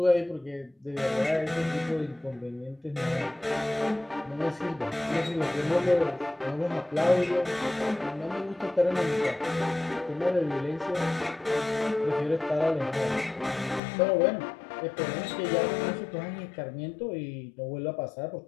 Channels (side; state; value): right; drops out; at 13.8 s